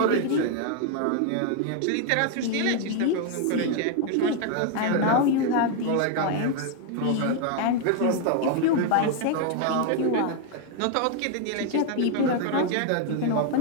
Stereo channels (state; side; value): different; both; correlation 0.01